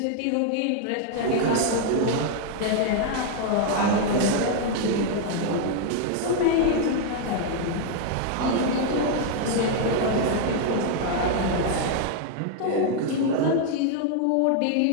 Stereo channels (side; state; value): both; different; correlation 0.00